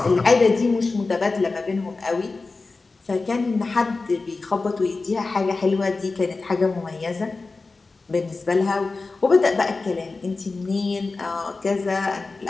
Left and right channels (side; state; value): right; quieter; 3.8 dB